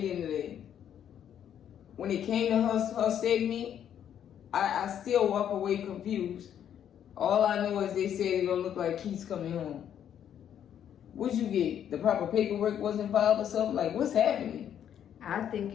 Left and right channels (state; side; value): quieter; right; 9.6 dB